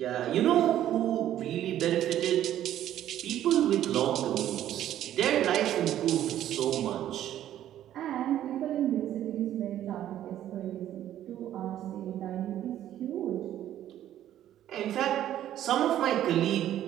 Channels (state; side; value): quieter; left; 11.9 dB